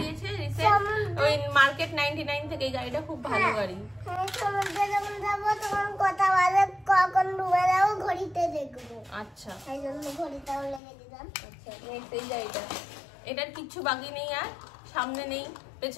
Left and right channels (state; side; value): drops out; right; at 10.8 s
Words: দিয়েছে রিসেন্ট, ওই মার্কেট 99 থেকে। এই গাড়িটা খুব ভালো গাড়ি। সমুদ্রে যখন যাবো তখন কথা বলে কখন ডুবে যাবো ঘড়িতে দেখবো। আচ্ছা, সেই জন্য ঘড়িটাও লেগে দিলাম। আচ্ছা, নেক্সট এই গাড়িটা, এটার কিচ্ছু বাকি নেই, আর সামনে নেই,